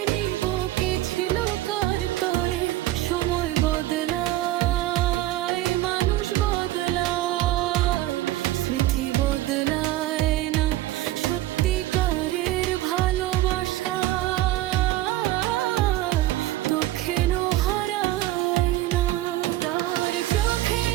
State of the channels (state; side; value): quieter; left; 15.6 dB